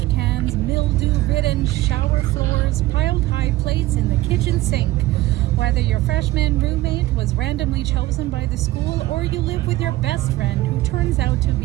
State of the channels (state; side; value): quieter; left; 17.2 dB